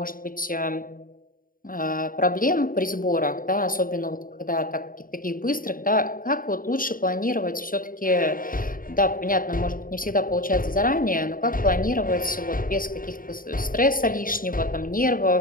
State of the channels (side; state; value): right; late; 0.41 ms